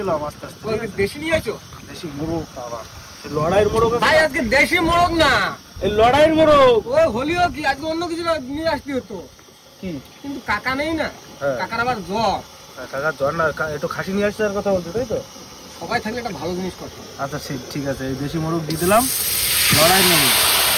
আস্তে আস্তে। ওই দেশি নিয়ে আছো দেশি মোরগ বাবা এই লড়াইয়ের মোরগ আছে। ভাই আজকে দেশি মোরগ না এই লড়াইয়ের মোরগ ওই হলিও কি আজকে অন্য কিছু নিয়ে আসতে হতো কি কিন্তু কাকা নেই না হ্যাঁ। কাকার আবার জ্বর কাকা জ্বর না একটু খাসি নিয়ে আসছে আর কথা বলতে তাই তো। সবাই থাকলে একটা ভালো জিনিস করতো আচ্ছা ঠিক আছে এই দেশি মোরগ দিয়ে দিলাম লড়াইয়ের মোরগ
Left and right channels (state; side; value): identical; both; correlation 1.00